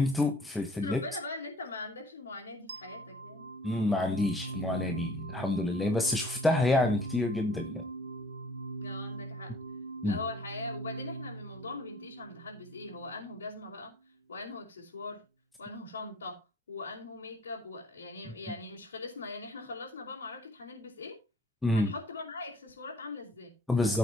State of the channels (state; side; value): normal; both; correlation 0.54